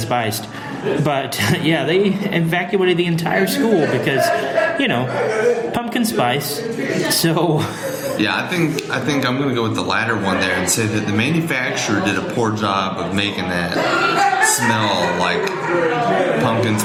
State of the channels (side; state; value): both; identical; correlation 1.00